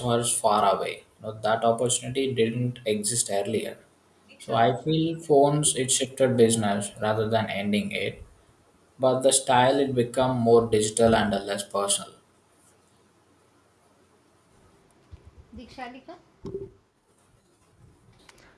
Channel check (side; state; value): both; identical; correlation 1.00